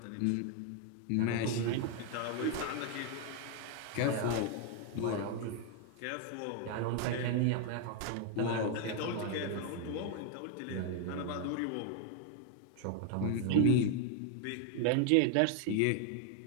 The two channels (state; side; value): different; both; correlation 0.00